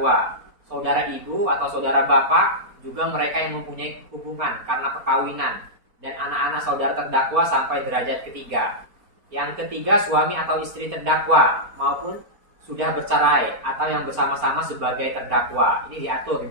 Saudara ibu atau saudara bapak, juga mereka yang mempunyai hubungan karena perkawinan, dan anak-anak saudara terdakwa sampai derajat ketiga. Yang ketiga, suami atau istri terdakwa maupun sudah bercerai atau yang bersama-sama sebagai terdakwa. Ini diatur di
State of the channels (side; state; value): left; late; 4.2 ms